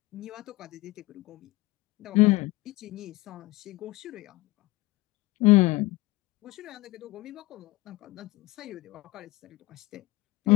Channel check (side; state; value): right; quieter; 20.8 dB